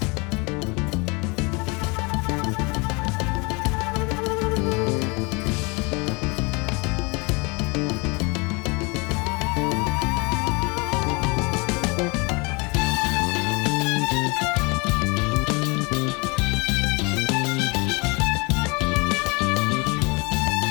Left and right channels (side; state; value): right; quieter; 28.6 dB